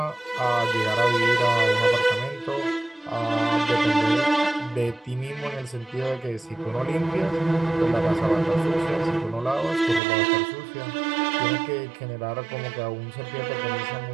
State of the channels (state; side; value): drops out; left; at 10.0 s